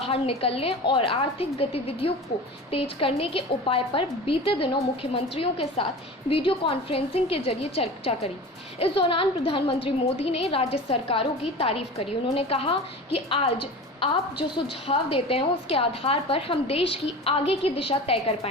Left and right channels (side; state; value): both; normal; correlation 0.34